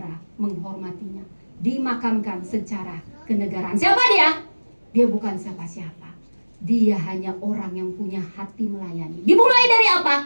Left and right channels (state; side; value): inverted; both; correlation -1.00